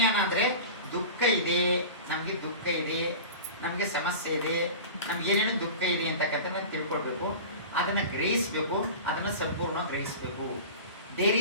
ಅಂದ್ರೆ ದುಃಖ ಇದೆ, ನಮ್ಗೆ ದುಃಖ ಇದೆ, ನಮ್ಗೆ ಸಮಸ್ಯೆ ಇದೆ, ನಮ್ಗೆ ಏನೇನು ದುಃಖ ಇದೆ ಅಂತಕ್ಕಂಥ ತಿಳ್ಕೊಳ್ಬೇಕು, ಅದನ್ನ ಗ್ರಹಿಸ್ಬೇಕು, ಅದನ್ನ ಸಂಪೂರ್ಣ ಗ್ರಹಿಸ್ಬೇಕು. There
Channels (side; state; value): both; inverted; correlation -0.33